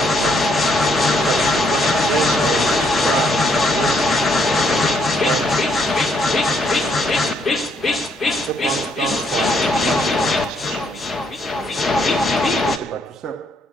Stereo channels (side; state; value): both; normal; correlation 0.71